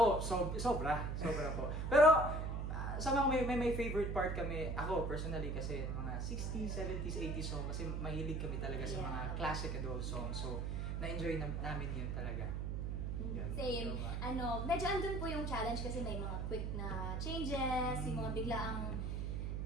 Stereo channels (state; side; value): noise; right; hum, 1 dB below the sound